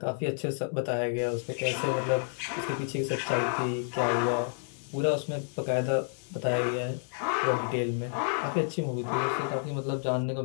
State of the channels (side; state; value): right; silent; 58 dB below the other